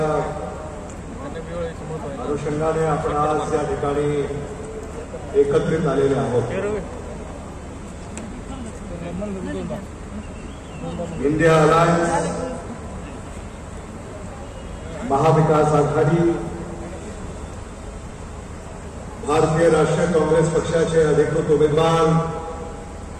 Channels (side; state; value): both; identical; correlation 1.00